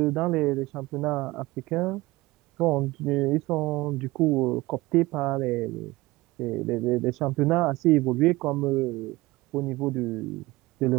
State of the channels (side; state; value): left; quieter; 20.2 dB